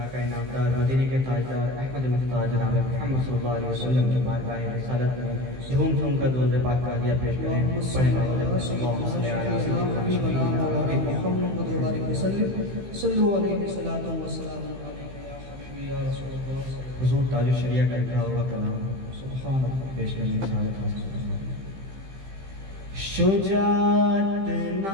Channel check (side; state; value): left; late; 15 ms